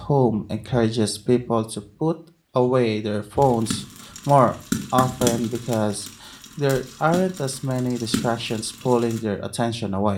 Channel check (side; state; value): both; identical; correlation 1.00